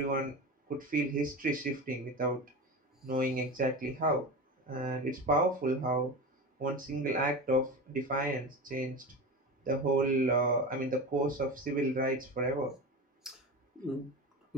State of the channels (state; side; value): normal; both; correlation 0.26